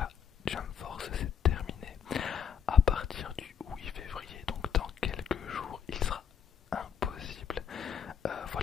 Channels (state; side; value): quieter; right; 8.1 dB